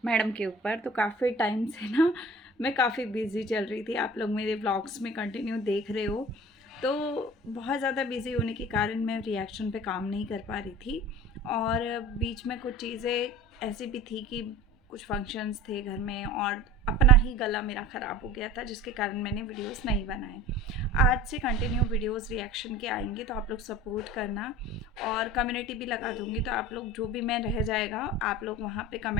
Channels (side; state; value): both; normal; correlation 0.40